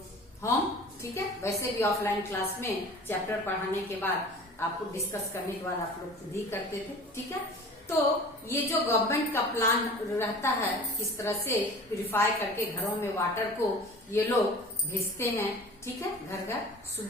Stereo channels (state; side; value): normal; both; correlation 0.41